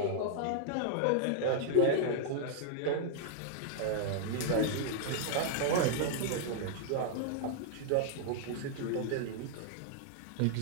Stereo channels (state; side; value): different; both; correlation -0.01